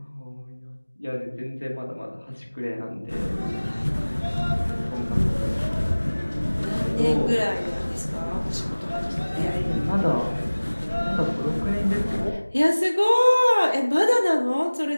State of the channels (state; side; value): inverted; both; correlation -1.00